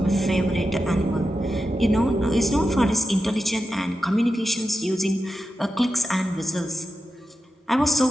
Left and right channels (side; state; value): both; normal; correlation 0.90